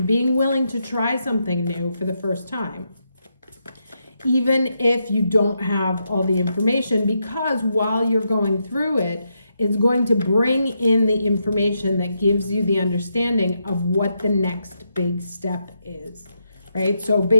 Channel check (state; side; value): inverted; both; correlation -0.82